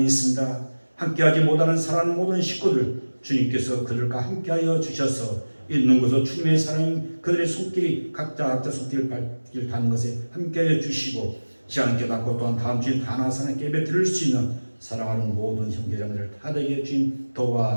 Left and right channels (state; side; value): inverted; both; correlation -1.00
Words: 있습니다. 함께하지 못하는 사랑하는 모든 식구들 주님께서 그들과 함께하여 주셔서 있는 곳에서 주님의 사랑이 그들의 손길이 각자 손길을 닿는 것에 함께하여 주시고 시간 깨닫고 또한 다음 주에 다나사나 예배 드릴 수 있는 사랑하는 모든 형제자매들 다되게 주님